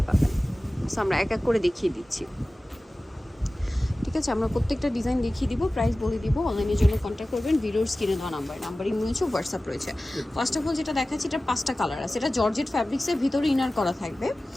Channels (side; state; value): both; normal; correlation 0.97